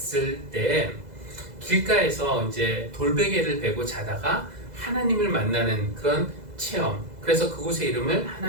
때 길가에서 이제 돌베개를 베고 자다가 하나님을 만나는 그런 체험, 그래서 그곳의 이름을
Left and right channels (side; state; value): left; late; 2.0 ms